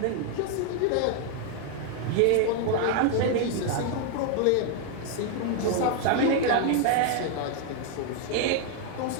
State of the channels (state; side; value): different; both; correlation 0.00